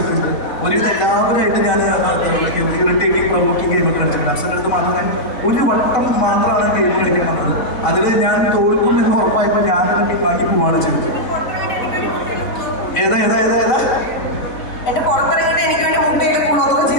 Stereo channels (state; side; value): late; right; 4.0 ms